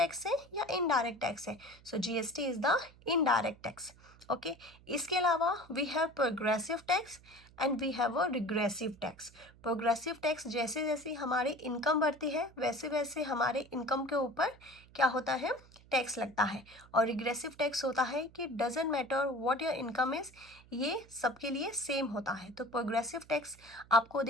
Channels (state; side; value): noise; right; hum, 24 dB below the sound